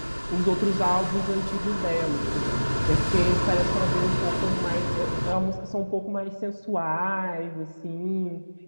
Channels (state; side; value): inverted; both; correlation -1.00